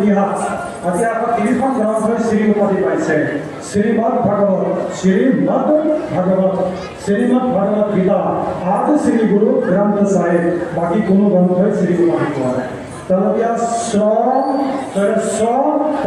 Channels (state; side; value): identical; both; correlation 1.00